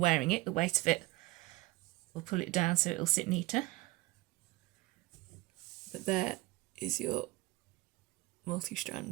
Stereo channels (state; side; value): quieter; left; 19.6 dB